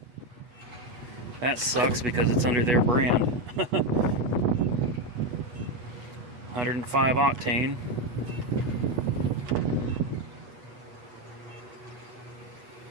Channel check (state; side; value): late; left; 8.3 ms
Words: That sucks because it's under their brand. 105 octane.